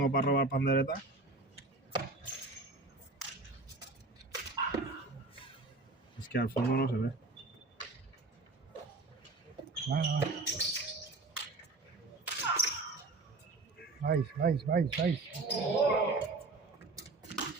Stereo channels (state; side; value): quieter; left; 3.4 dB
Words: para robar pandereta. Es que al fondo no se ve. Vais.